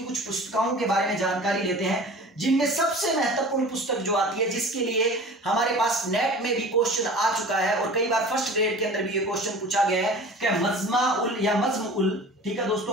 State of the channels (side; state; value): both; normal; correlation 0.40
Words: कुछ पुस्तकों के बारे में जानकारी लेते हैं, जिनमें सबसे महत्वपूर्ण पुस्तक जो आती है, जिसके लिए हमारे पास नेट में भी क्वेश्चन आ चुका है और कई बार फर्स्ट ग्रेड के अंदर भी ये क्वेश्चन पूछा गया है कि मजमा उल या मज्म उल, ठीक है